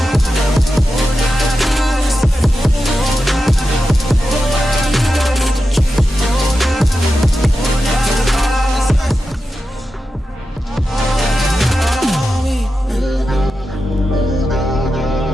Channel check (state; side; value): normal; both; correlation 0.91